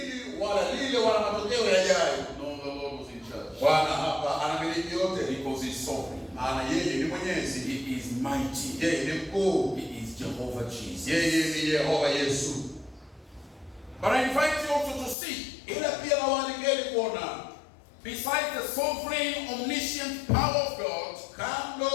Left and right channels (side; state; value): right; drops out; at 15.2 s